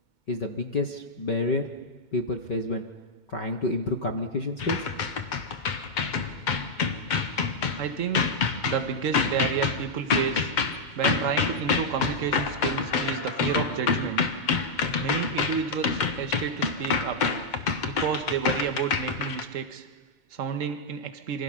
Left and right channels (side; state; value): right; late; 2.2 ms